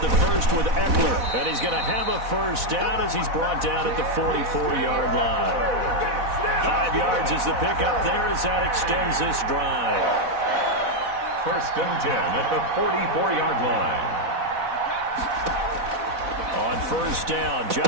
the first with Eckler, and he's going to have a first down as he's brought down at the 44-yard line. 5 yards is the pickup there as that extends this drive. 1st and 10 at the 44-yard line. On first down,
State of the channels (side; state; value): left; late; 4.1 ms